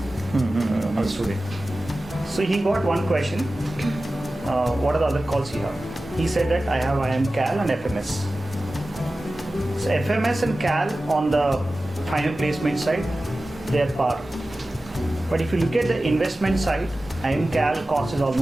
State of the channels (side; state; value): both; normal; correlation 0.95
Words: a student. So he got one question. what are the other calls you have? He said that I have IM Cal and FMS. So FMS and Cal on the final placement side, they are par. But if you look at the investment side, IM Cal cost is